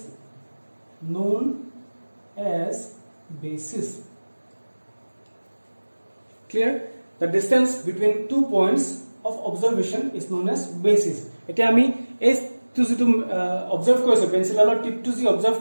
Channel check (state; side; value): inverted; both; correlation -1.00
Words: known as basis. Clear? The distance between 2 points of observation is known as basis. এতিয়া আমি এই two যেটো observe কৰিছো পেন্সিলৰ টিপটো যি observe